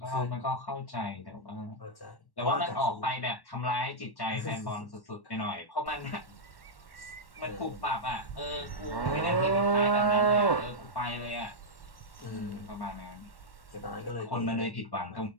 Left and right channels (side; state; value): right; late; 1.1 ms